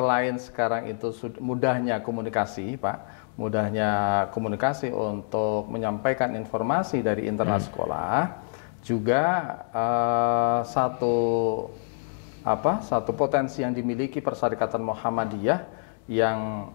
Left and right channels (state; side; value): silent; right; digital silence